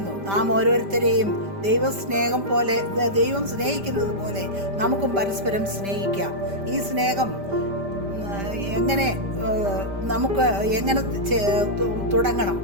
നാം ഓരോരുത്തരെയും ദൈവം സ്നേഹിക്കുന്നത് പോലെ നമുക്കും പരസ്പരം സ്നേഹിക്കാം. ഈ സ്നേഹം നമുക്ക് എങ്ങനെ തുടങ്ങണം?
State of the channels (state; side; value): late; left; 5.1 ms